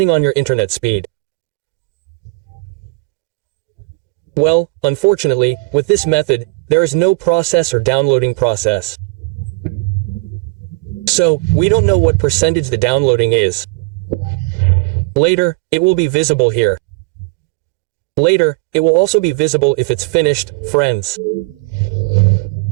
on your internet speed. Well, unfortunately, with this method, there is no process or downloading process. So, we don't know what percentage the downloading is. Later, it will be visible here. Later, it will also be visible if it's finished, friends.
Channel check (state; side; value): quieter; left; 27.0 dB